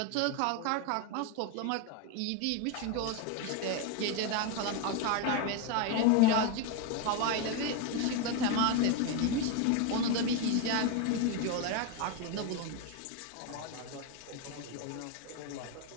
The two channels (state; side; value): different; both; correlation 0.02